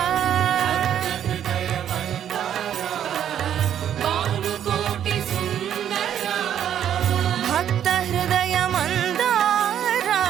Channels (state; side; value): quieter; left; 9.9 dB